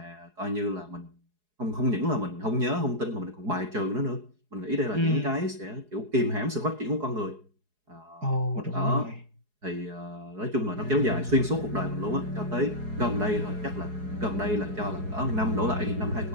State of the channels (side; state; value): left; late; 4.8 ms